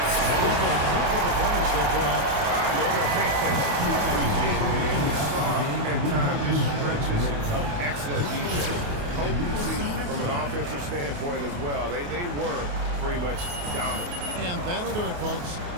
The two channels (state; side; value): late; left; 28 ms